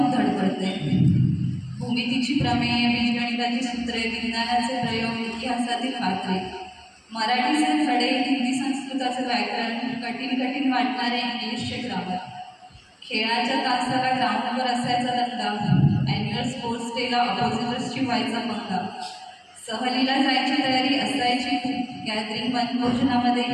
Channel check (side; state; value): both; identical; correlation 1.00